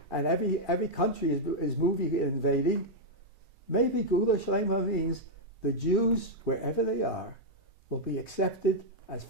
and every country is moving and invading. Maybe Gula Shlema means the Jews, wherever they are, will be accepted as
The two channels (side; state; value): both; normal; correlation -0.03